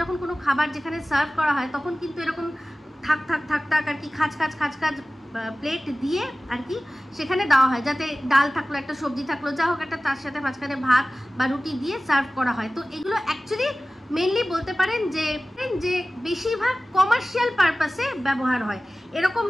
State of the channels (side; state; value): both; normal; correlation 0.97